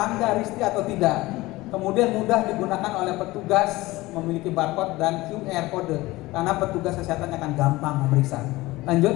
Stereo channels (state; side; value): quieter; right; 19.5 dB